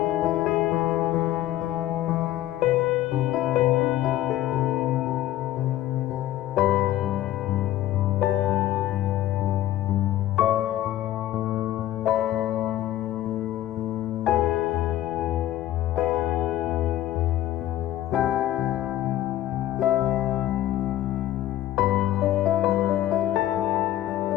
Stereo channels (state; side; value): quieter; right; 13.7 dB